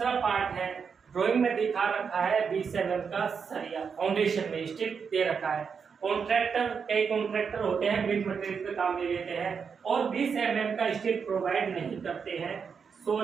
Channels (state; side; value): quieter; left; 6.1 dB